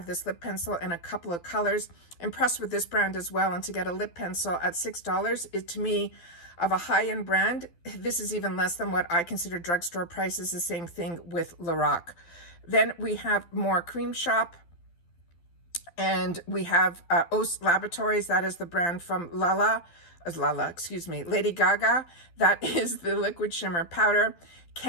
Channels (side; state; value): right; late; 12 ms